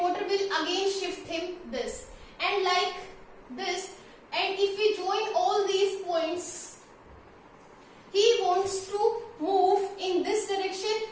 will again shift him this, and like this. And if we join all these points, he wants to move in this direction.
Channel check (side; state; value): both; identical; correlation 1.00